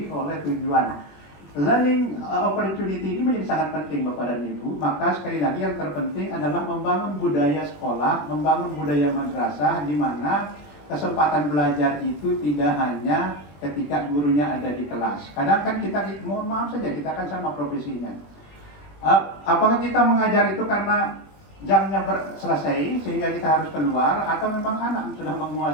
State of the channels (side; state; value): right; late; 21 ms